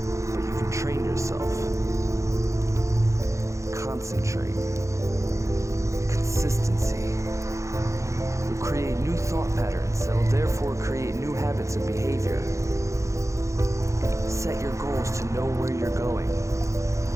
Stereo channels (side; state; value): left; late; 0.15 ms